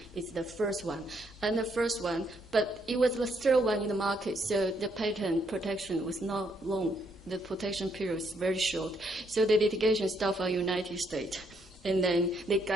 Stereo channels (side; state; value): both; normal; correlation 0.73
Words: It's the first one. And the first one, but it was the third one in the market, so the patent protection was not long. The protection period was very short. So the litigation started from the United States. And then they